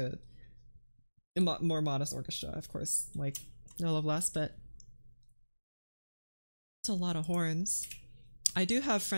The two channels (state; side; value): inverted; both; correlation -1.00